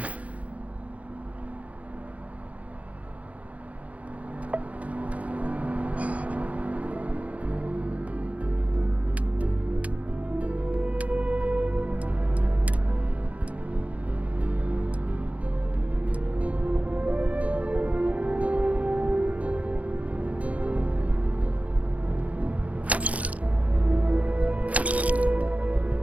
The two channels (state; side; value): late; left; 0.066 ms